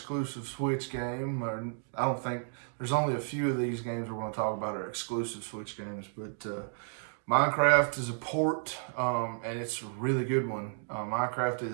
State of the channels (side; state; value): left; silent; digital silence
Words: Switch game. I don't think, there's only a few of these games we're going to talk about are exclusive Switch games, but Minecraft is a port, and it's a really good one. Minecraft